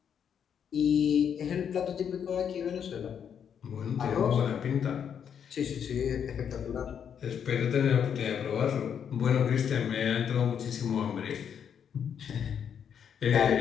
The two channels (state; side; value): quieter; right; 8.0 dB